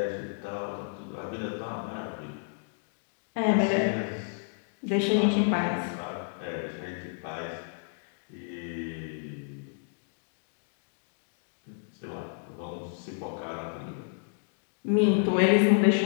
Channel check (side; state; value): right; silent; digital silence